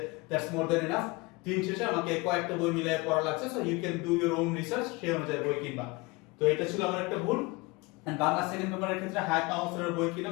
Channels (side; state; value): right; quieter; 24.6 dB